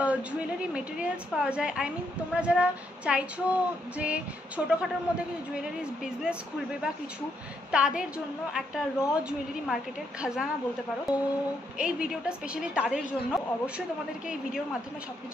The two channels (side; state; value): both; normal; correlation 0.76